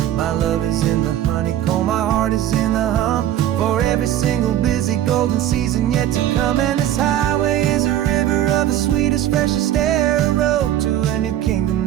My love is in the honeycomb, my heart is in the hum, for every single busy golden season yet to come. And this highway is a river of the sweetest, freshest air, a road to a new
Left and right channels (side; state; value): left; quieter; 12.0 dB